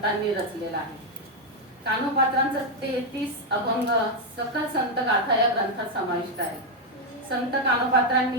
रचलेला आहे. कानोपात्रांचा 33 अभंग सकल संत गाथा या ग्रंथात समाविष्ट आहे. संत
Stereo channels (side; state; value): both; normal; correlation 0.02